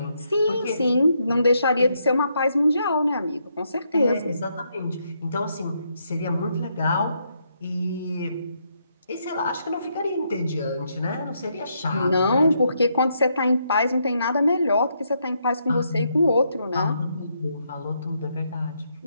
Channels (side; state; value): both; inverted; correlation -0.77